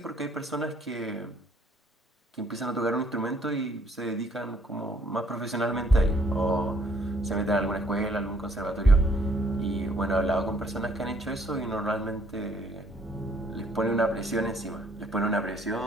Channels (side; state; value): both; normal; correlation 0.63